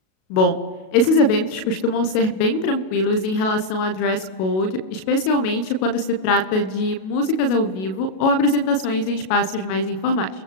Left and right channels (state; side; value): late; right; 37 ms